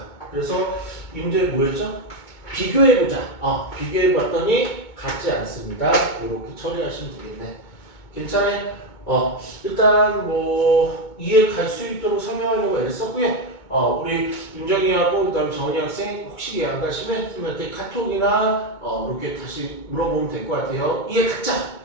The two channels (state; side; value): late; right; 2.2 ms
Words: 그래서 이 문제 뭐였죠? 비교해보자. 비교해봤더니 같지 않습니다. 이렇게 처리하시면 되겠네. 괜찮아요? 일단 뭐 이해 갈 수 있도록 설명하려고 애를 썼고요. 우리 윤정이하고 그다음에 정은이 학생 혹시 이해 안 가시면 선생님한테 카톡이나 이렇게 다시 물어보면 될 것 같아요. 이해 갔자.